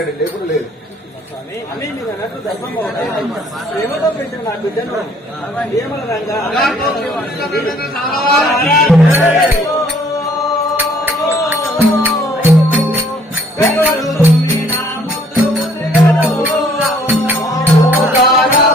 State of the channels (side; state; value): both; normal; correlation 0.61